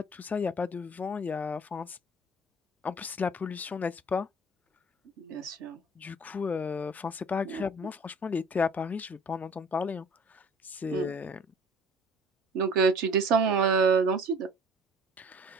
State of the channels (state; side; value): normal; both; correlation 0.48